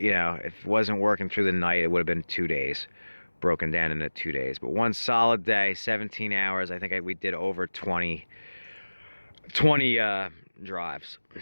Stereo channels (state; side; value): inverted; both; correlation -1.00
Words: wasn't working through the night, it would have been 2 days, broken down into 2 days. But one solid day, 17 hours, I think we did over 20 drives,